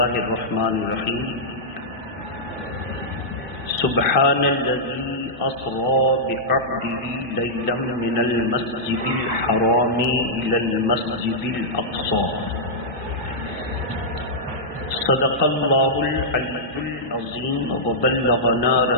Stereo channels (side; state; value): both; normal; correlation -0.12